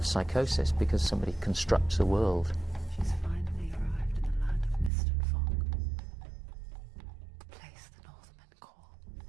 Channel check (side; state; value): left; drops out; at 4.9 s